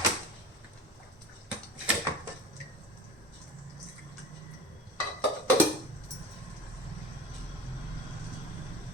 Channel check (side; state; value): both; normal; correlation 0.35